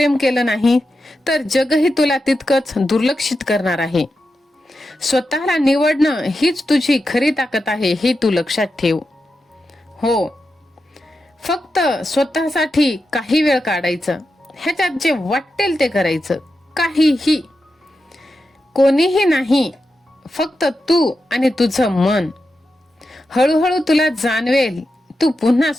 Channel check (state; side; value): normal; both; correlation 0.89